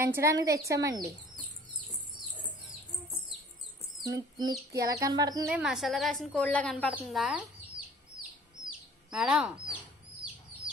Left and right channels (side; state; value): both; normal; correlation 0.51